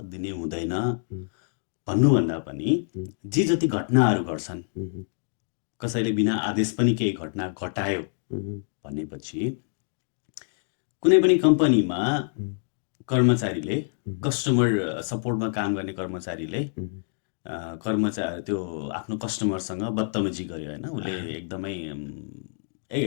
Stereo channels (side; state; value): right; silent; digital silence